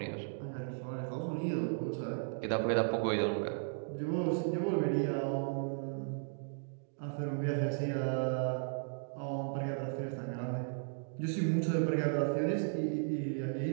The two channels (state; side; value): silent; left; digital silence